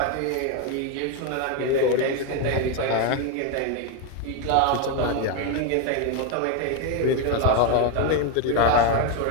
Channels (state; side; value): different; both; correlation 0.01